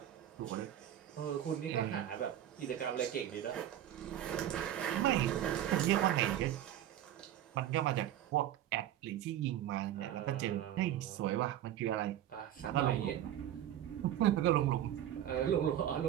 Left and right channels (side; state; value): left; quieter; 11.6 dB